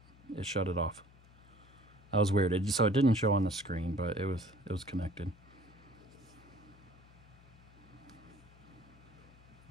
It shut it off. That was weird. So it didn't show on the screen, but it was connected.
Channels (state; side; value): noise; left; hum, 24 dB below the sound